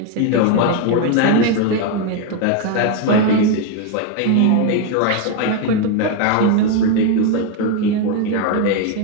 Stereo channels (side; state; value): both; different; correlation 0.01